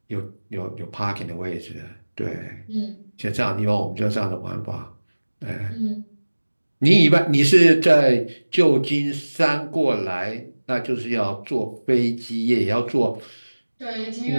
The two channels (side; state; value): both; inverted; correlation -1.00